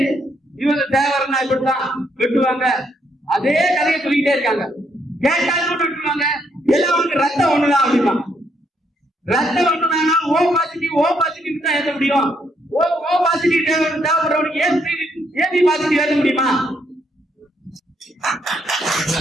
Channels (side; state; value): both; normal; correlation 0.74